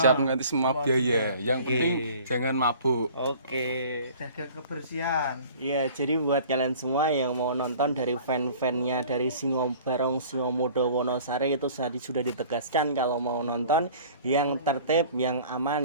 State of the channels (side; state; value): both; inverted; correlation -0.47